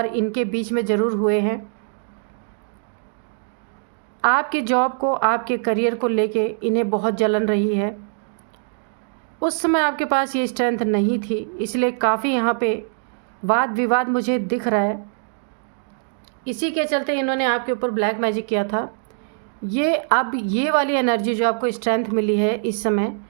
इनके बीच में ज़रूर हुए हैं। आपके जॉब को, आपके करियर को लेके इन्हें बहुत जलन रही है। उस समय आपके पास ये स्ट्रेंथ नहीं थी, इसलिए काफ़ी यहाँ पे वाद विवाद मुझे दिख रहा है। इसी के चलते इन्होंने आपके ऊपर ब्लैक मैजिक किया था। ये अब ये वाली एनर्जी जो आपको स्ट्रेंथ मिली है इस समय,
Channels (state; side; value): silent; left; digital silence